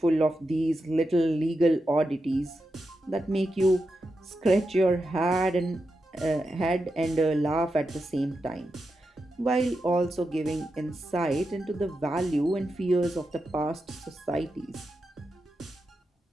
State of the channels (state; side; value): normal; both; correlation 0.88